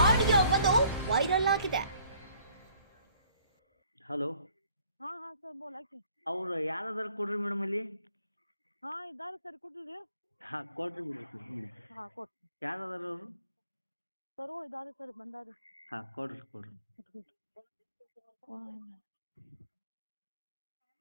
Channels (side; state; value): both; inverted; correlation -0.58